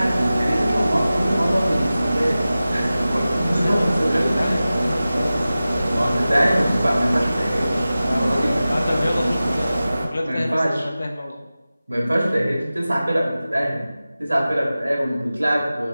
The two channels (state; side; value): inverted; both; correlation -0.96